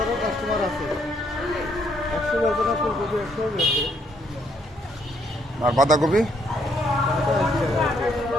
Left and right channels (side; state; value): both; normal; correlation 0.70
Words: কাস্টমার আছে, 100 ব্যাপারে ফুলকপি 100 বেশি। আর বাঁধাকপি?